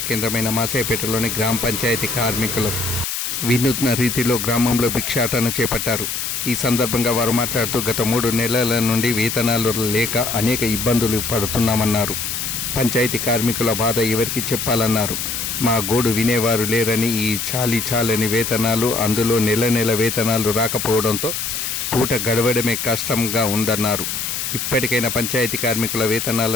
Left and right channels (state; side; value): noise; left; hiss, 3 dB below the sound